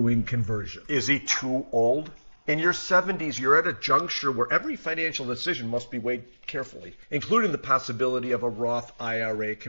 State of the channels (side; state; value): both; inverted; correlation -1.00